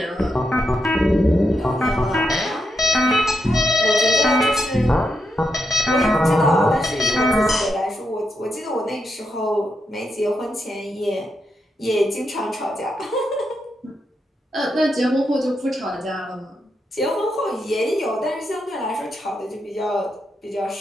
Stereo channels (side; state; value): both; normal; correlation 0.83